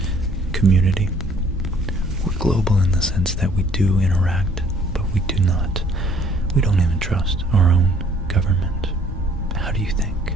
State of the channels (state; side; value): normal; both; correlation 0.60